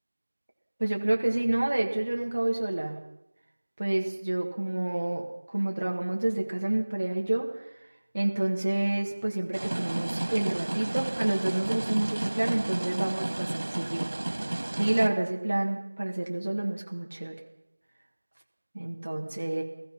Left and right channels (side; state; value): both; inverted; correlation -1.00